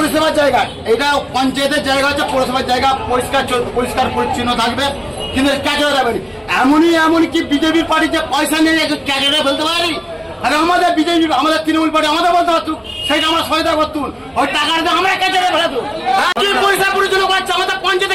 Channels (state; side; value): identical; both; correlation 1.00